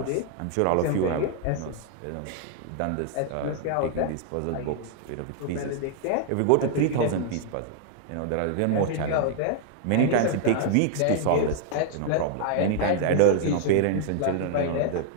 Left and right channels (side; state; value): both; different; correlation 0.00